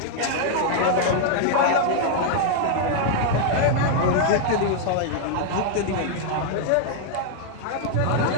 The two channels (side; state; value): both; different; correlation 0.00